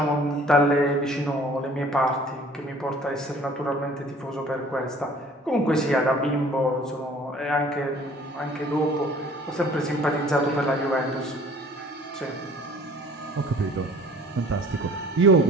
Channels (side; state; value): both; normal; correlation 0.51